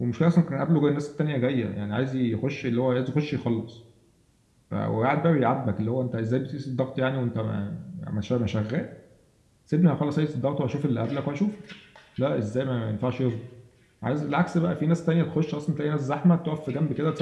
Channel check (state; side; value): identical; both; correlation 1.00